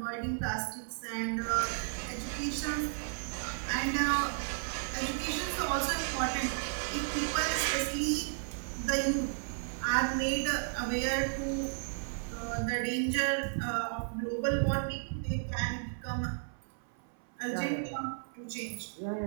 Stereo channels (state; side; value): silent; left; 55 dB below the other